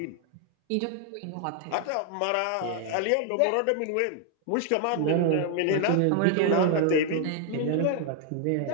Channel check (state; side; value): different; both; correlation 0.00